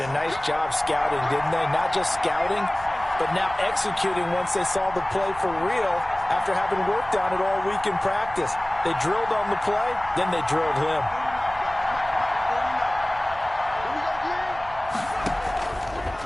nice job scouting, didn't they? Not just scouting, but now executing once they saw the play for real after having worked on it all week in practice. They drilled on the play, then they drilled him.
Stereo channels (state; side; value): noise; right; rumble, 17 dB below the sound